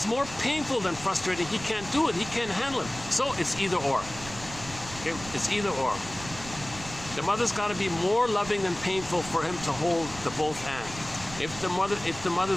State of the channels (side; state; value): right; noise; rumble, 14 dB below the sound